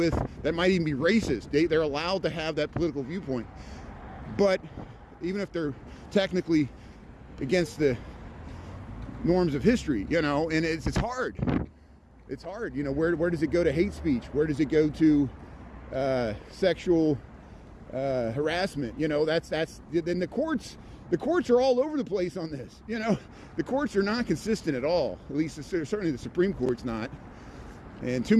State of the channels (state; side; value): identical; both; correlation 1.00